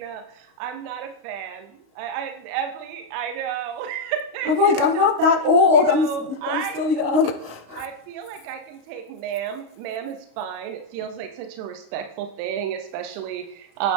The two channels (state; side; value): late; left; 35 ms